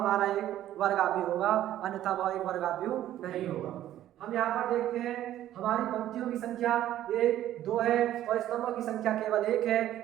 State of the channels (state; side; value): quieter; left; 12.7 dB